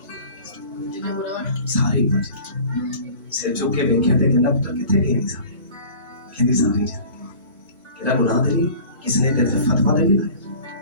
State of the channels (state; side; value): inverted; both; correlation -0.42